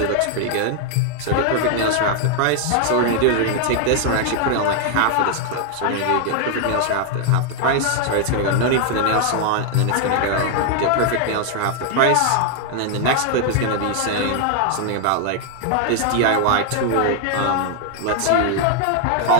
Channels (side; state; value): both; different; correlation 0.00